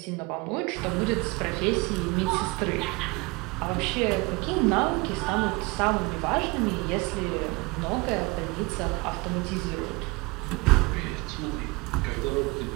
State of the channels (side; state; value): left; quieter; 26.2 dB